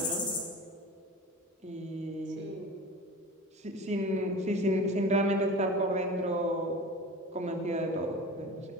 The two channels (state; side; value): normal; both; correlation 0.35